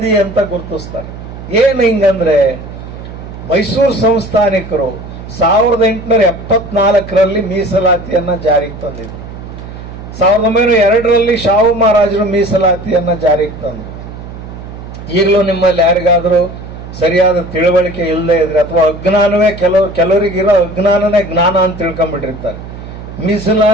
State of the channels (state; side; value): noise; right; hum, 12 dB below the sound